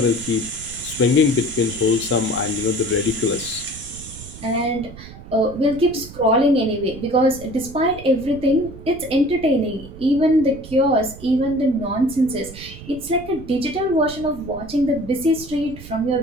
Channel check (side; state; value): right; noise; rumble, 15 dB below the sound